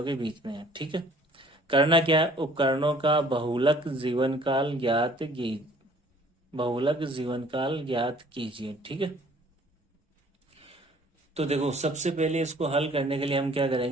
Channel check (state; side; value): normal; both; correlation 0.55